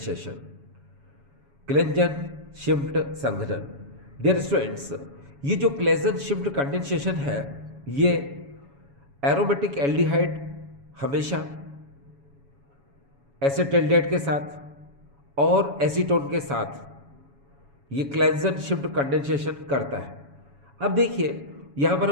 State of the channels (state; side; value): late; left; 7.1 ms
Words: क्लेजन-शिम्प्ट संघनन। डियर स्टूडेंट्स, ये जो क्लेजन-शिम्प्ट कंडेंसेशन है, ये एरोमेटिक एल्डिहाइड हमेशा एसिटल्डिहाइड के साथ और एसीटोन के साथ ये क्लेजन-शिम्प्ट कंडेंसेशन करता है। अब देखिए यहाँ पर